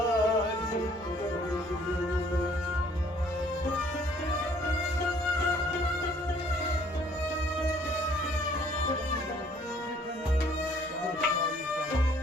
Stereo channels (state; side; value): normal; both; correlation 0.60